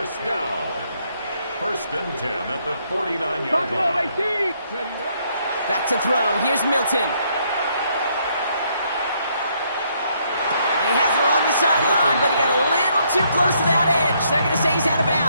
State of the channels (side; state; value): both; inverted; correlation -0.71